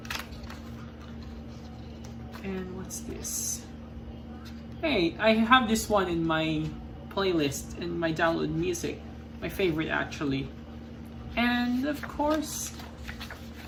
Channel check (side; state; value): both; identical; correlation 1.00